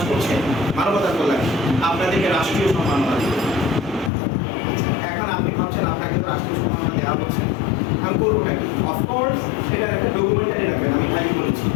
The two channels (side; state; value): right; drops out; at 4.1 s